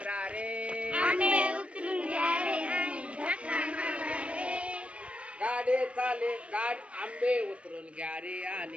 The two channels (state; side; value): late; left; 0.062 ms